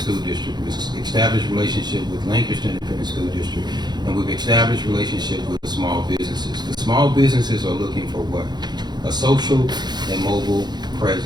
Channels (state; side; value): late; left; 0.21 ms